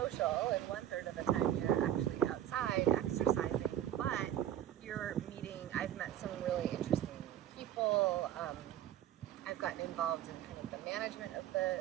and 1/3 of the time you're actually outside exercising, but you're meeting. I've met some really interesting people. I've gotten involved in kind of the management of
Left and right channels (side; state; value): left; quieter; 11.7 dB